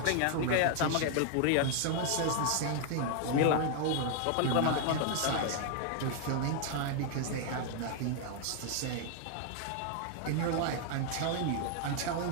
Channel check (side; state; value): both; different; correlation 0.00